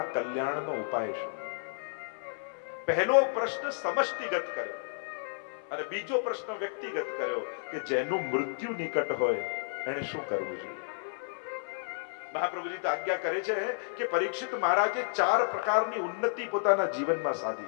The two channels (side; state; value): right; silent; 57 dB below the other